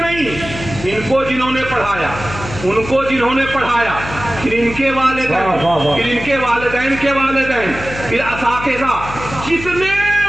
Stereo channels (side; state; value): left; noise; hum, 11 dB below the sound